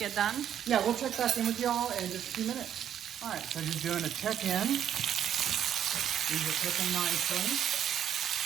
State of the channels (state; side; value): quieter; left; 9.8 dB